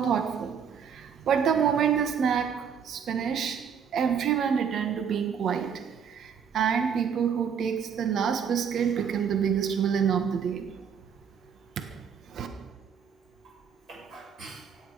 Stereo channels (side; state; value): left; quieter; 7.3 dB